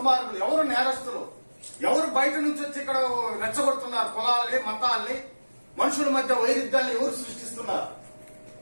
ఎవరు నేరస్తులు, ఎవరు బయట నుంచి వచ్చి ఇక్కడ రెచ్చగొడుతున్నారు? కులాలని, మతాల్ని, మనుషుల మధ్య వైరుధ్యాన్ని ఎవరు సృష్టిస్తున్నారు?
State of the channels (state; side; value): inverted; both; correlation -1.00